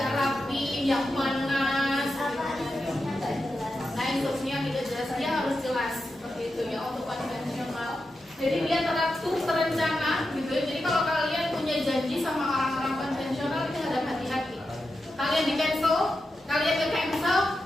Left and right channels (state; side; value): normal; both; correlation 0.89